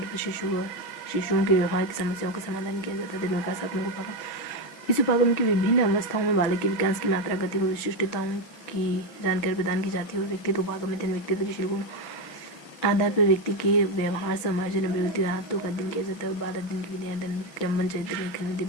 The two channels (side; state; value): right; late; 6.3 ms